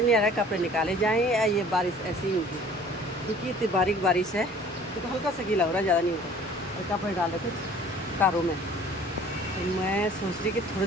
आ रहा है कपड़े निकाले जाएं या ये बारिश ऐसी ही होगी। क्योंकि इतनी बारीक बारिश है तो हल्का सा गीला हो रहा है, ज़्यादा नहीं होता। और कपड़े डाल रखे कारों में, तो मैं सोच रही कि थोड़ी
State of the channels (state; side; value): normal; both; correlation 0.50